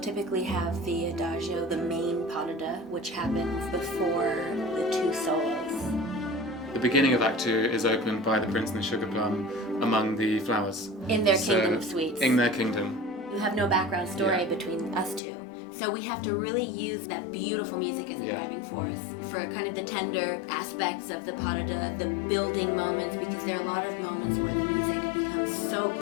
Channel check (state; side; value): drops out; right; at 15.2 s